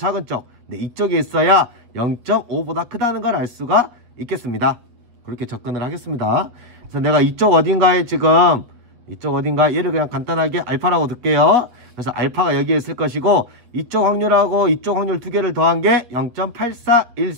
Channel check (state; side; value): late; left; 8.4 ms